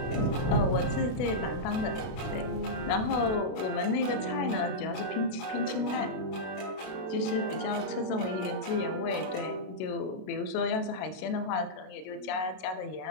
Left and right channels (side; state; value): right; late; 32 ms